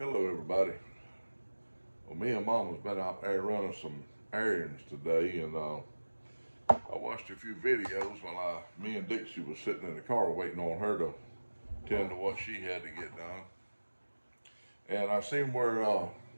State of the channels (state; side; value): inverted; both; correlation -1.00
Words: Hello everybody. Well, me and Mama's been out there running some errands today, and I watched a few videos while me and Dixie was sitting in the car waiting on her to tend to what she had to get done. And I seen where